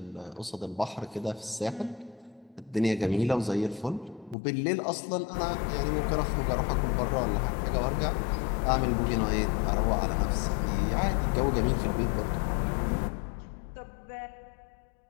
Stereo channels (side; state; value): right; drops out; at 4.4 s